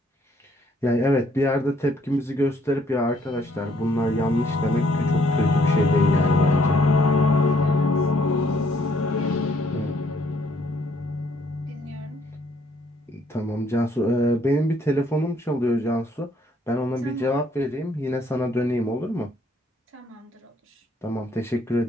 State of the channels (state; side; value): normal; both; correlation 0.66